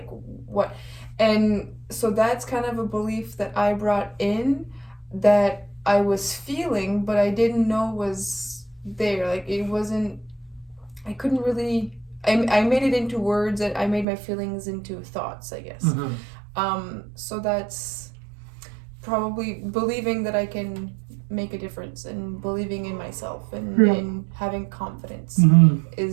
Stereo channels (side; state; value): left; drops out; at 14.1 s